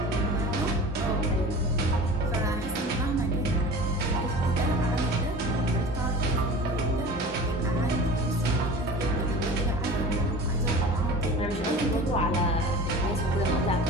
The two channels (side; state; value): both; normal; correlation 0.37